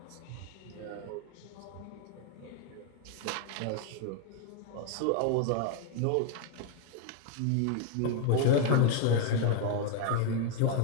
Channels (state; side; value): different; both; correlation 0.00